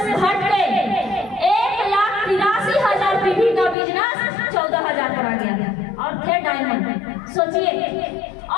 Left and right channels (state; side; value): drops out; right; at 3.8 s